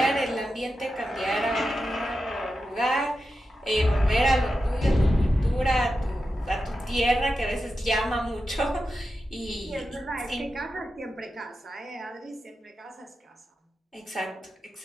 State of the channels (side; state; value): both; normal; correlation 0.90